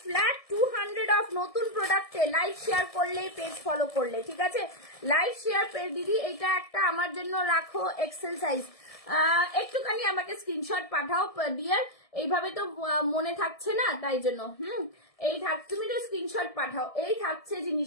ফ্ল্যাট 200 অফ নতুন প্রোডাক্টে লাইক শেয়ার করলে, পেজ ফলো করলে, ঠিক আছে। লাইক শেয়ার পেজ দিদি, এটা একটা আমার জন্য রাখো এক্সেল সাইজ, একটুখানি আমাকে স্ক্রিনশট পাঠাও ডিয়ার, এইভাবে তো মনে থাকছে না, তাই জন্য তুমি তো স্ক্রিনশট পাঠাও। এই থাকছে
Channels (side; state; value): right; late; 1.7 ms